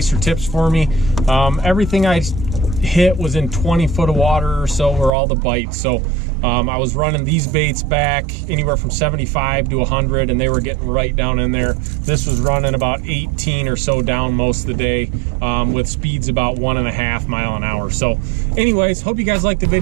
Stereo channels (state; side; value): drops out; left; at 5.1 s